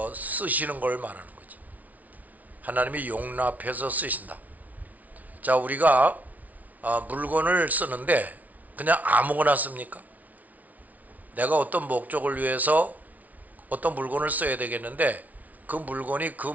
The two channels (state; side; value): late; left; 0.073 ms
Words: 쓰시는 걸 말하는 거지. 하나님이 용납해서 쓰신다. 자, 우리가 물건을 쓰는데 그냥 아무거나 씁니까? 내가 어떤 목적을 위해서 어떤 물건을 써야 되겠는데 그 물건이 그